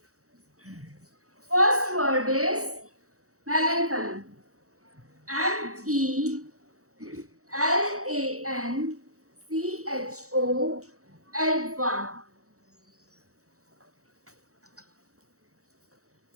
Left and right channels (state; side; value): late; left; 0.65 ms